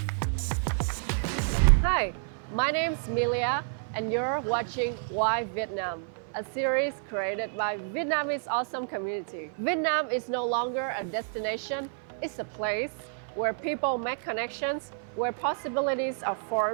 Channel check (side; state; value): left; silent; 55 dB below the other